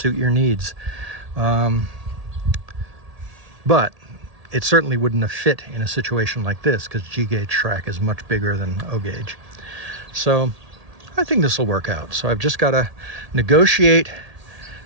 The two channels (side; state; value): left; late; 1.8 ms